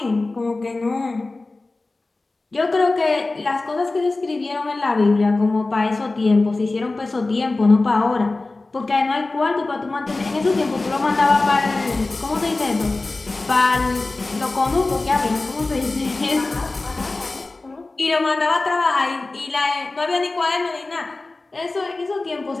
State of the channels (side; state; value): right; quieter; 3.3 dB